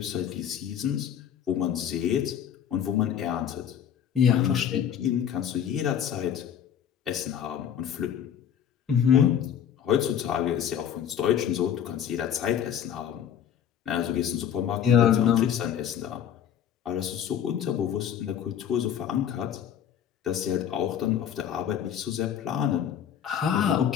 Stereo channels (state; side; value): quieter; right; 9.2 dB